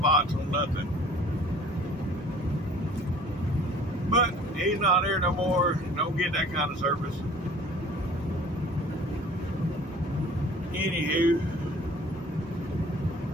on nothing. But he's not there no more. Don't get that kind of service. Anywho,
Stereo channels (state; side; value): normal; both; correlation 0.49